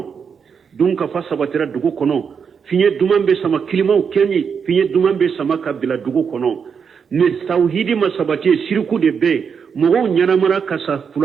dunkafa sabatira dugu kɔnɔ fiɲɛ duman bɛ sama kilimaw kɛɲi fiɲɛ duman bɛ sama ka bila dugu kɔnɔ ni tawhidi ma sabati ye siriku de bɛ yen mɔgɔw ɲɛnamara ka sa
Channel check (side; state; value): left; quieter; 6.5 dB